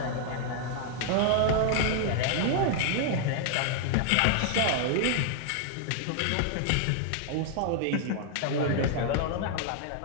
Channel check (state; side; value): different; both; correlation 0.00